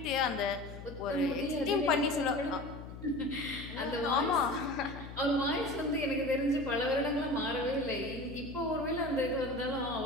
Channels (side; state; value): left; noise; hum, 12 dB below the sound